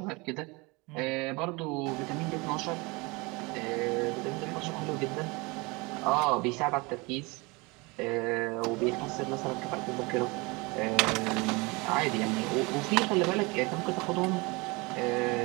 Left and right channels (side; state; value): left; quieter; 26.1 dB